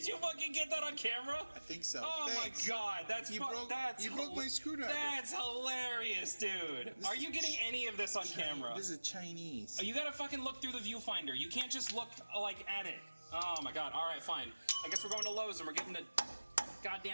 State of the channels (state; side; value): inverted; both; correlation -1.00